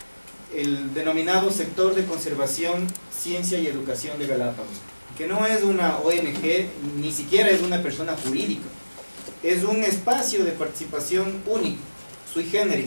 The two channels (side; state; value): both; inverted; correlation -1.00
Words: el denominado sector de conservación, ciencia y educación de Galápagos, que no es una ONG, ni siquiera es una persona jurídica, es un espacio de participación único, sui